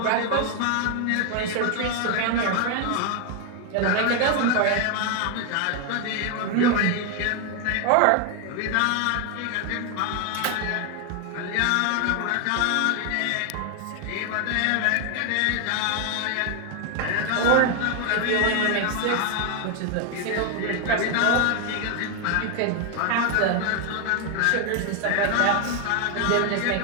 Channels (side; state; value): both; different; correlation 0.01